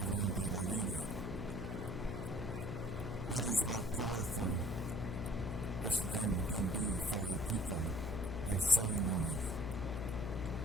that arena. That is how powerful this drum can be for our people, our ceremonies.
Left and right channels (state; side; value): noise; left; hum, 5 dB below the sound